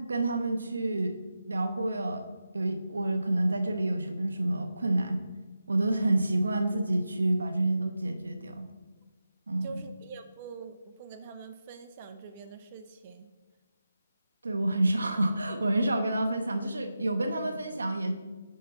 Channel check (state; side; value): inverted; both; correlation -0.91